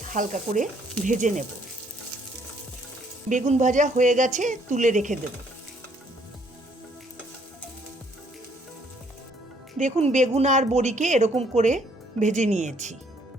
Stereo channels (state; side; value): normal; both; correlation 0.65